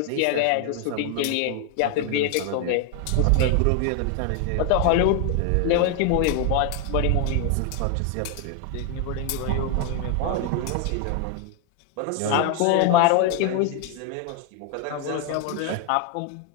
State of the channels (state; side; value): different; both; correlation 0.01